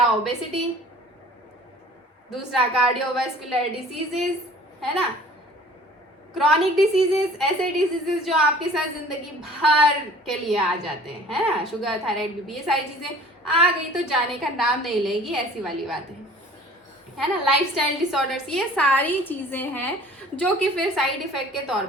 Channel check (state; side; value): normal; both; correlation 0.49